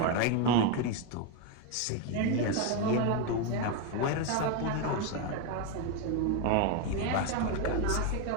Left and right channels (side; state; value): both; different; correlation 0.02